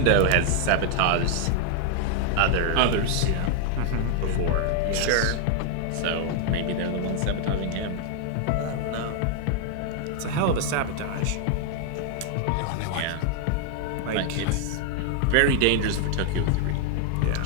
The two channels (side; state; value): both; different; correlation 0.00